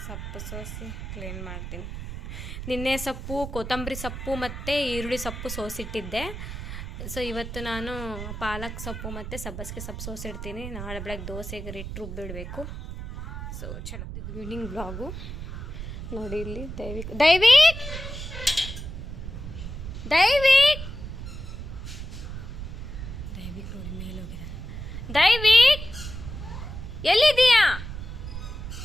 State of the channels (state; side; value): noise; right; rumble, 8 dB below the sound